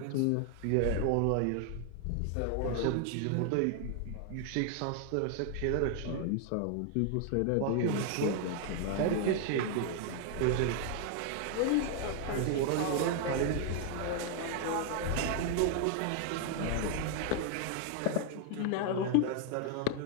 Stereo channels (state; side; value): different; both; correlation 0.00